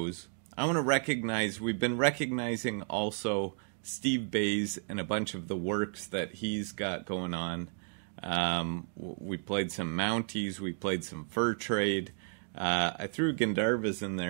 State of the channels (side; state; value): left; silent; 56 dB below the other